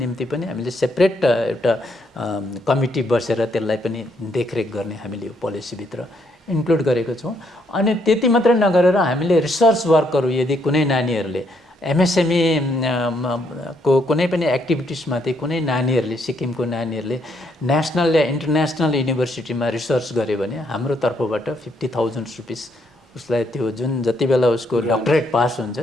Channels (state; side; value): normal; both; correlation 0.73